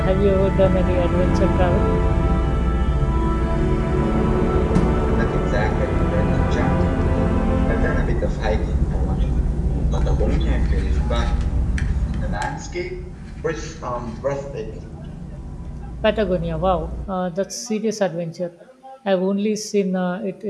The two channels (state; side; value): identical; both; correlation 1.00